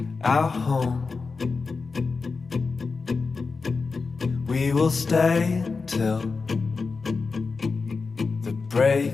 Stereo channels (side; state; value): right; quieter; 4.4 dB